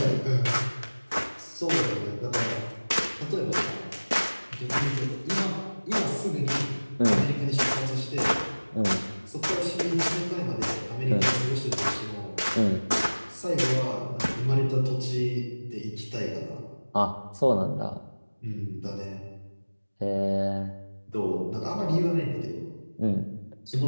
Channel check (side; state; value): both; inverted; correlation -1.00